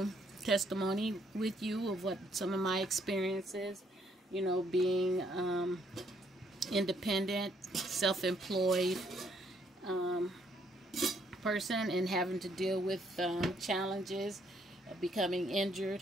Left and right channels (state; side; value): normal; both; correlation 0.69